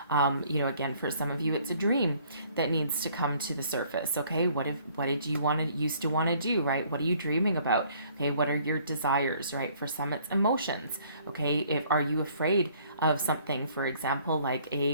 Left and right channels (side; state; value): both; inverted; correlation -0.60